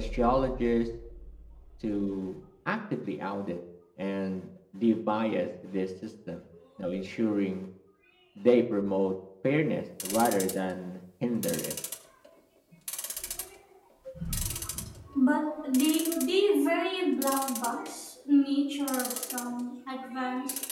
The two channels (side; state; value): both; identical; correlation 1.00